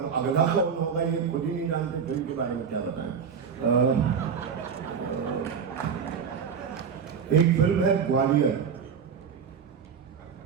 अगला कौन होगा ये खुद ही नहीं जानते, फिल्म के बारे में क्या बताएं। एक फिल्म है ग्वालियर,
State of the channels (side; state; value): left; quieter; 6.7 dB